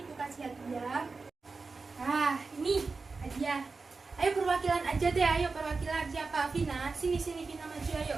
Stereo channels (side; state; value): left; quieter; 4.2 dB